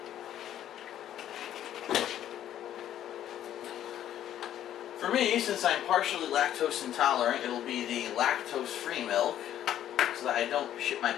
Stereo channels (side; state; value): right; quieter; 11.3 dB